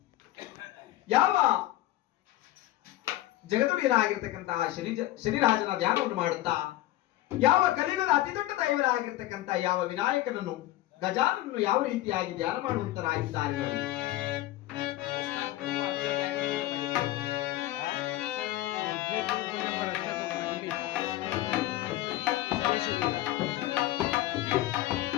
ಯಾವ ಜಗದುಡಿಯನಾಗಿರ್ತಕ್ಕಂತಹ ಶನಿರಾಜನ ಧ್ಯಾನವನ್ನು ಮಾಡುತ್ತಾ ಯಾವ ಕಲಿಯುಗದ ಅತಿ ದೊಡ್ಡ ದೈವರಾಗಿರ್ತಕ್ಕಂಥ ಯಾವ ವಿನಾಯಕನನ್ನು ಗಜಾನನನ್ನು ಯಾವ ರೀತಿಯಾಗಿ ಧ್ಯಾನ ಮಾಡುವಂತರಾಗಿದ್ದಾರೆ ನೋಡಿ.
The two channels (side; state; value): right; quieter; 15.5 dB